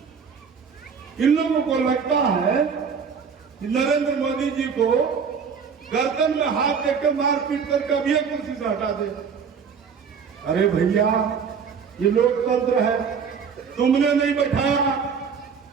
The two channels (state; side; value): quieter; left; 6.3 dB